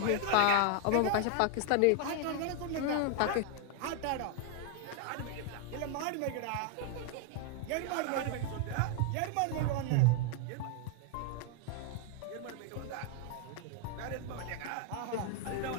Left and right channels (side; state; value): both; different; correlation 0.00